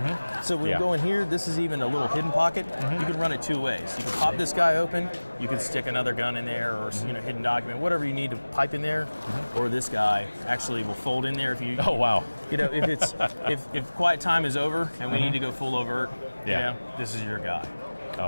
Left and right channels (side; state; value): both; inverted; correlation -1.00